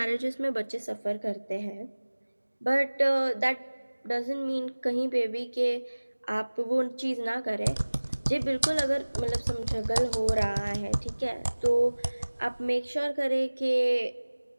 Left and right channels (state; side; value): inverted; both; correlation -1.00